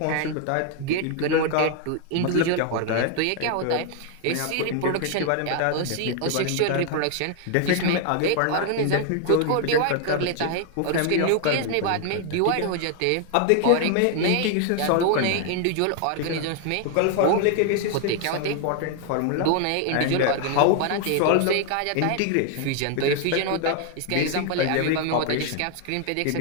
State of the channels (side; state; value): both; different; correlation 0.00